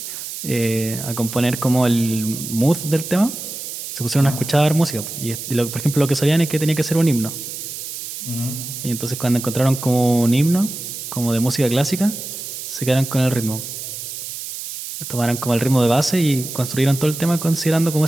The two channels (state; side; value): noise; right; hiss, 8 dB below the sound